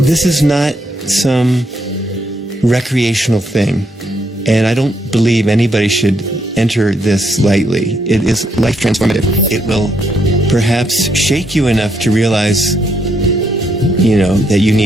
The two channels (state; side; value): normal; both; correlation 0.75